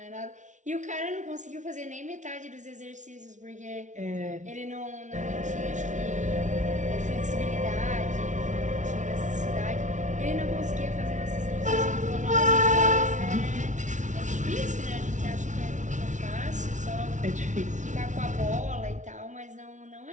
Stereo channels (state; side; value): late; left; 0.36 ms